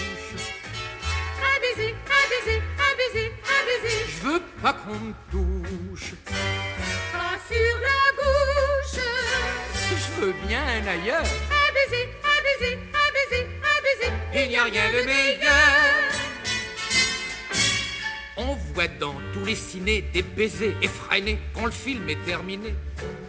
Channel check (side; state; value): both; identical; correlation 1.00